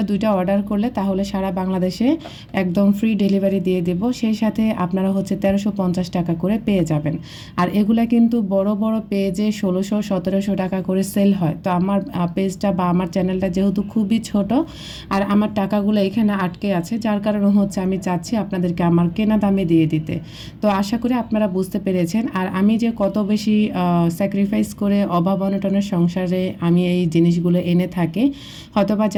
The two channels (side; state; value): both; identical; correlation 1.00